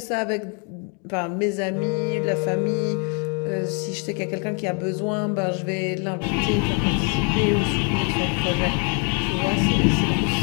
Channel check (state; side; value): quieter; right; 37.1 dB